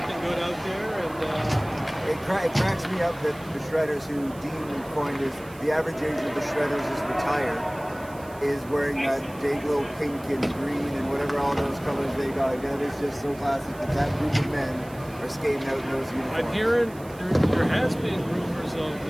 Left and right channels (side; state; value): right; noise; hiss, 22 dB below the sound